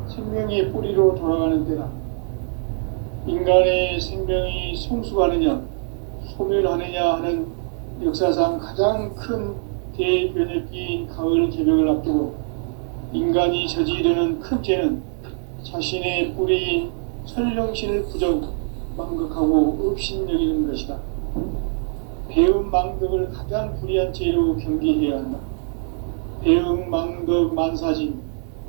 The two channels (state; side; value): silent; left; 57 dB below the other